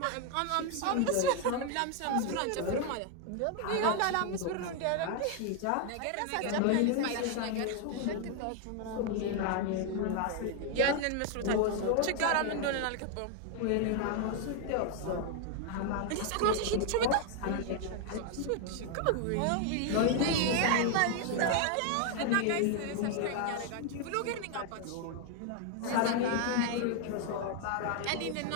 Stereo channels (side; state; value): both; different; correlation 0.00